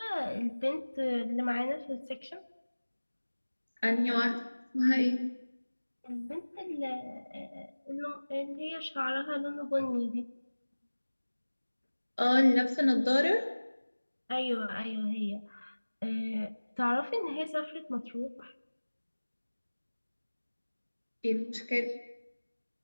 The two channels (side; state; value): both; inverted; correlation -1.00